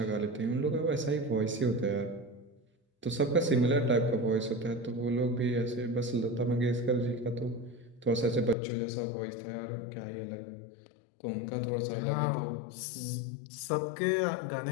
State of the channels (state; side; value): drops out; right; at 8.6 s